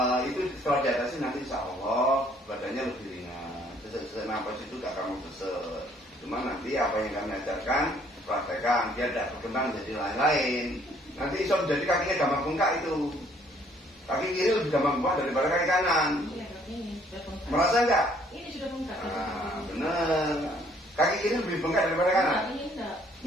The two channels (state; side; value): normal; both; correlation 0.62